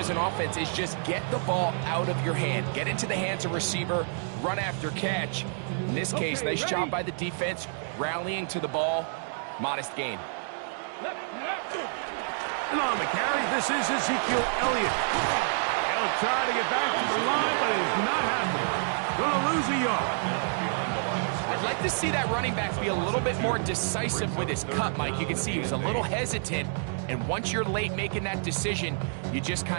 an offense is just get the ball out of your hand. Get into the hands of receiver, run after catch. In this case, nice job by the defense, rallying to the ball. Modest gain. And on the carry, this is Ezekiel Elliott. They'll try to get back to the line, but it's not happening. Gonna lose a yard. I'd like to see that running back be a little bit more decisive with his cut, Mike. You can see he was a little hesitant, and once you're late making that decision, you just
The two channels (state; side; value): silent; left; digital silence